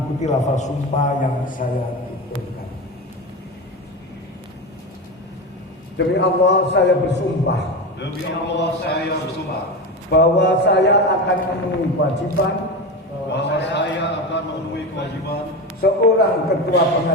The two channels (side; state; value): both; normal; correlation 0.22